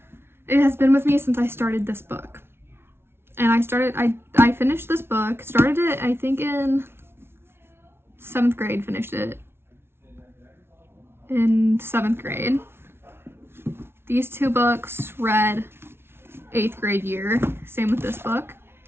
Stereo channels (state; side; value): late; left; 0.12 ms